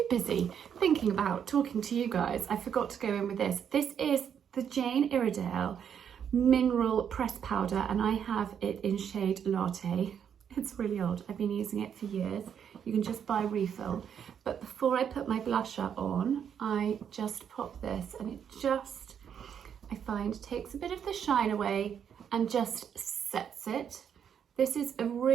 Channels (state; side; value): quieter; left; 8.2 dB